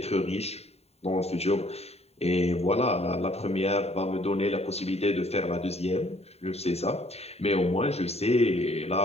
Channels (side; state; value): right; late; 0.30 ms